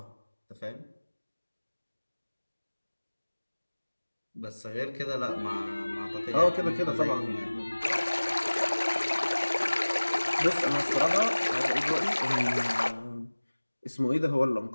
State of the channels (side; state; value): both; inverted; correlation -1.00